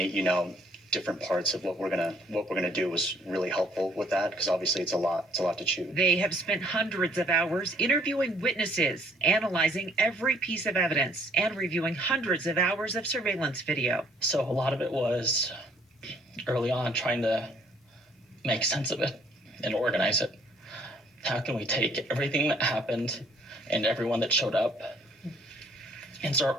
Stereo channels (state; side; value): normal; both; correlation 0.61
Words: parts of what we're gonna do was really helpful with that, because obviously it's a lot to chew. They have spent hundreds of hours interviewing witnesses, analyzing every piece of evidence, and reviewing hundreds of hours of surveillance video. So a lot of it was early on trying to make sense of it and organize it. How can we take everything that happened and everyone that showed up and start